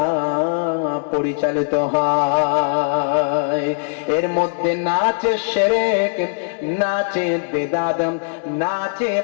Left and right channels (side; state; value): right; silent; digital silence